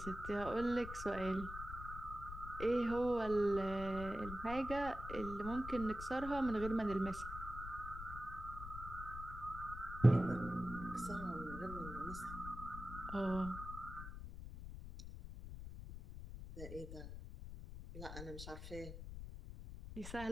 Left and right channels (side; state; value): left; noise; rumble, 9 dB below the sound